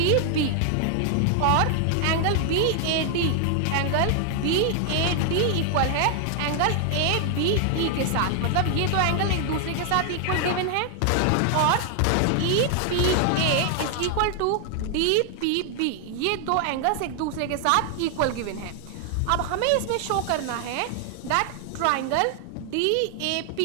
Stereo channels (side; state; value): both; different; correlation 0.00